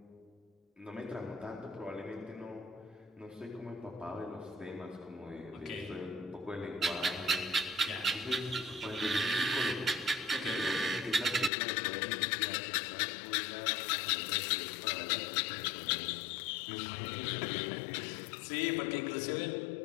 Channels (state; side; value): drops out; right; at 11.5 s